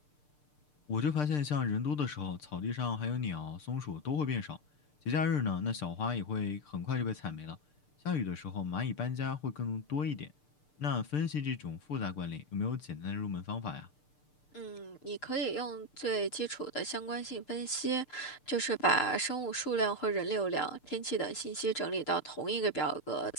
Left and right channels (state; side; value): late; right; 6.7 ms